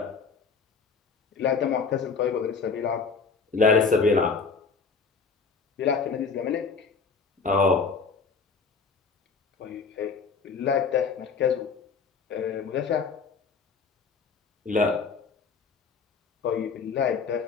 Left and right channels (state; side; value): quieter; right; 5.1 dB